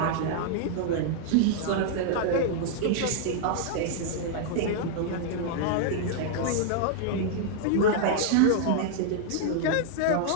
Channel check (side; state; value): both; different; correlation 0.00